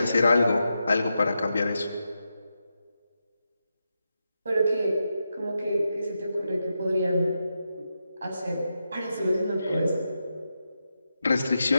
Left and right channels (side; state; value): both; inverted; correlation -0.87